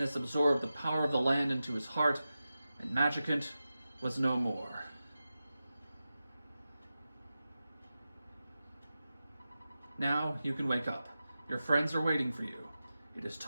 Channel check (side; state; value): both; inverted; correlation -0.93